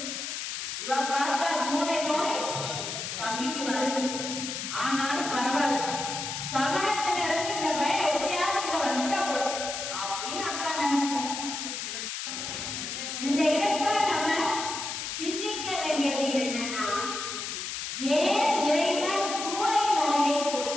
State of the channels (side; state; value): left; noise; hiss, 5 dB below the sound